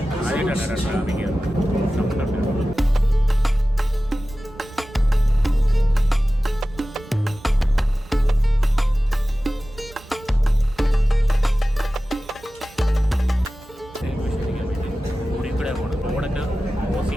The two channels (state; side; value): normal; both; correlation 0.96